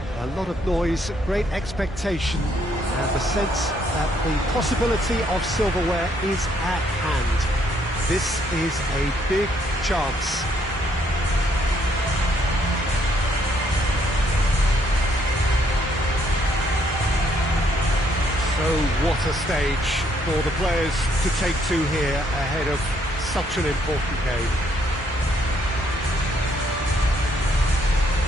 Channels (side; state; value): both; normal; correlation 0.69